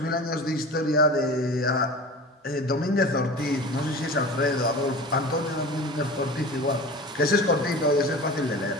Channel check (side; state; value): both; normal; correlation 0.35